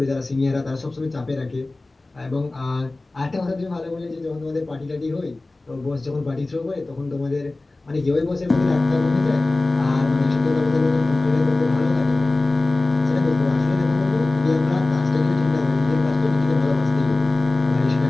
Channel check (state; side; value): quieter; right; 3.1 dB